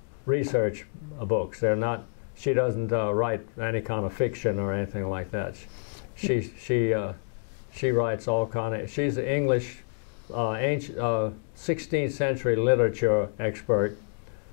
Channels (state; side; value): silent; right; digital silence